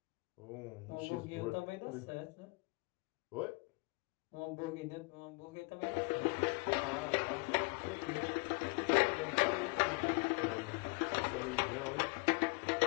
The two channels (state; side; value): quieter; right; 29.7 dB